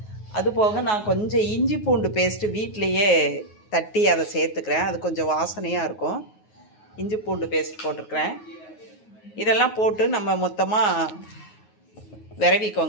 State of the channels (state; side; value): late; right; 9.4 ms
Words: அதுபோக நான் கொஞ்சம் இஞ்சி பூண்டு பேஸ்ட்டு வீட்டிலையே தட்டி அதை சேர்த்துக்கிறேன். அது கொஞ்சம் வாசனையாக இருக்கும். இஞ்சி பூண்டு பேஸ்ட் போட்டிருக்கிறேன். இதெல்லாம் போட்டு நம்ம மொத்தமாக